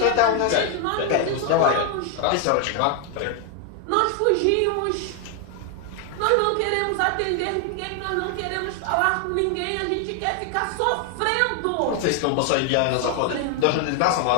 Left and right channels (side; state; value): both; different; correlation 0.01